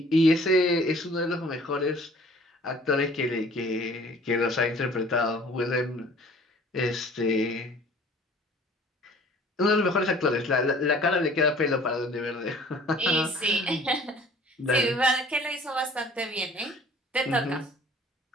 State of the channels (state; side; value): normal; both; correlation 0.51